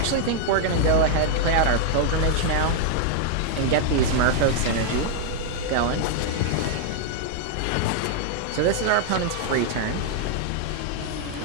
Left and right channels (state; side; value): different; both; correlation 0.00